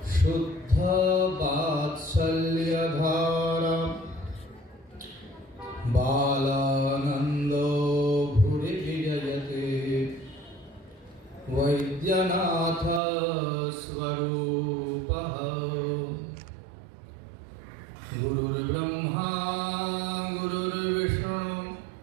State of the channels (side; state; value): left; drops out; at 13.0 s